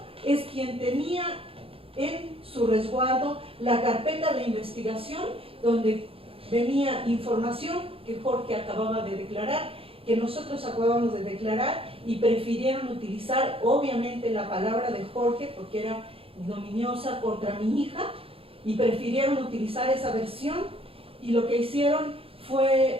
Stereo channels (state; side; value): late; left; 0.27 ms